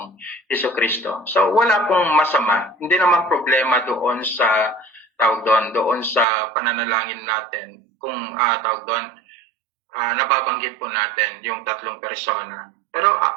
Jesucristo. So, wala pong masama. Hindi naman problema doon sa, doon sa pananalangin natin. Kung, nababanggit po natin yung tatlong persona. Pero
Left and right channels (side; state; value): left; drops out; at 6.2 s